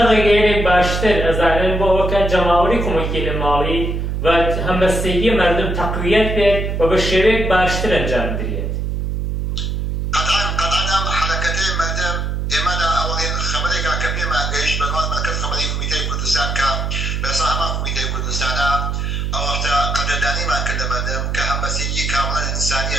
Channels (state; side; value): noise; right; hum, 1 dB below the sound